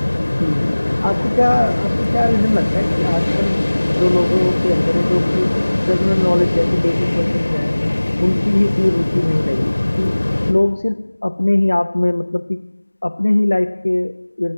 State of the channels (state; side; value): inverted; both; correlation -1.00